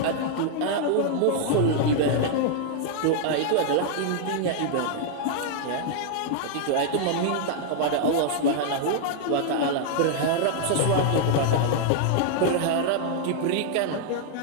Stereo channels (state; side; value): different; both; correlation -0.01